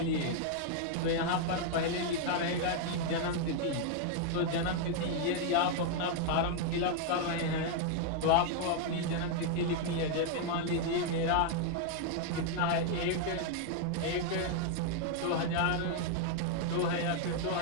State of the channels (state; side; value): different; both; correlation 0.00